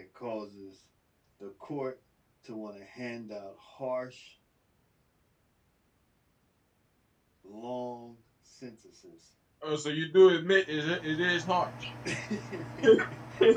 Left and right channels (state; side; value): identical; both; correlation 1.00